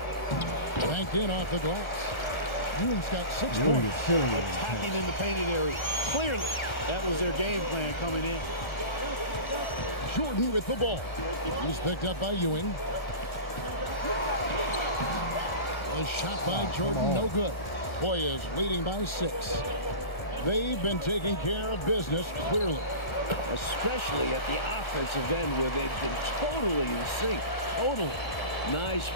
Banked in off the glass. Ewing's got 6 Ewing points. is killing it. Attacking in the painted area. Clearly, that was their game plan coming in. Jordan with the ball. He's picked up by Ewing. A shot by Jordan, no good. Hoyas leading by 6. They've been taking care of business clearly. Especially at the offensive end where they've been totally in sync. Totally. Nice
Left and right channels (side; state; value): right; late; 1.4 ms